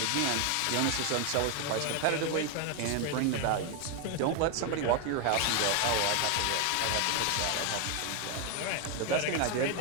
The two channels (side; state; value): both; different; correlation 0.01